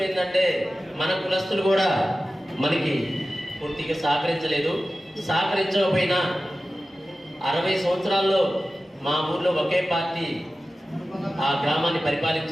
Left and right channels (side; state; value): both; normal; correlation 0.95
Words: ఏంటంటే మన కులస్తులు కూడా మనకి పూర్తిగా సహకరించలేదు. సహకరించకపోయినా 60 సంవత్సరాల్లో మా ఊర్లో ఒకే పార్టీ ఆ గ్రామాన్ని